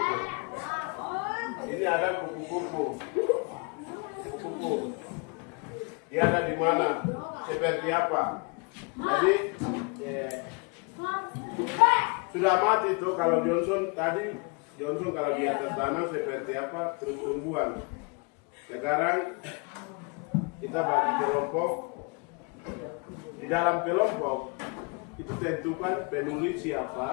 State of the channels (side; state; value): right; quieter; 32.1 dB